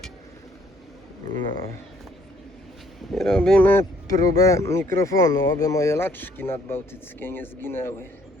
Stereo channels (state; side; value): normal; both; correlation 0.64